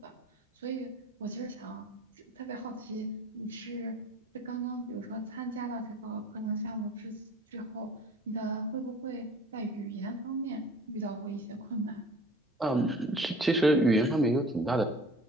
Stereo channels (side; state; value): both; normal; correlation 0.46